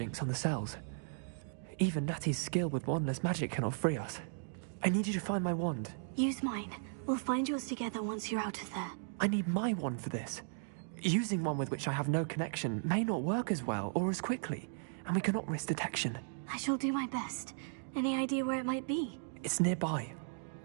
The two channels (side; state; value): left; silent; digital silence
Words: on the cells. Even Natty's skill with wandless magic cannot free us. I need you to find my wand. Use mine. We'll find yours together once you're out of there. I need my wand for this. Using one with which I have no connection may not work as well or as quickly, and we cannot risk detection. I shall do my best. Any idea where it might be? It's nearby.